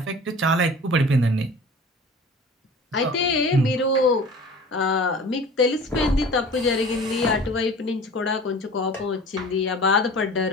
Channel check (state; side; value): normal; both; correlation 0.41